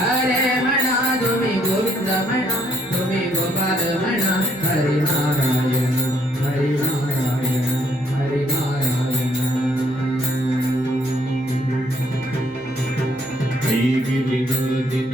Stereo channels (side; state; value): both; normal; correlation 0.69